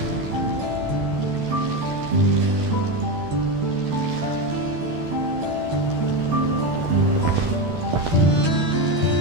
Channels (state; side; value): late; left; 12 ms